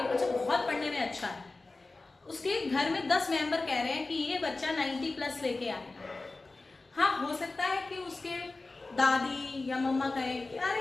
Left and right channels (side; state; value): right; quieter; 3.4 dB